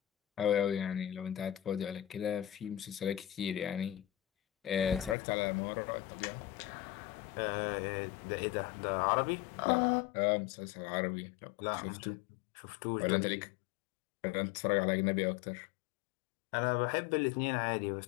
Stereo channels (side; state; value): right; drops out; at 5.2 s